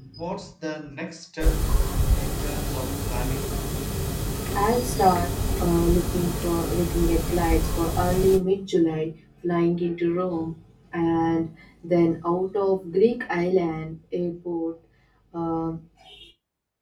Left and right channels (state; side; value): identical; both; correlation 1.00